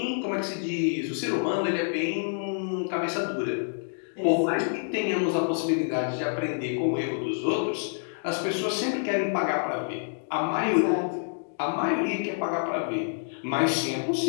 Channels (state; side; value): silent; right; digital silence